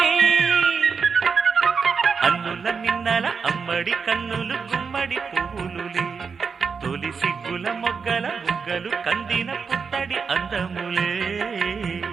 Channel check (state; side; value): quieter; left; 5.6 dB